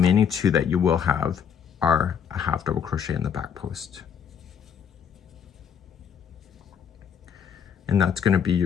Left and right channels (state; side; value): quieter; right; 7.6 dB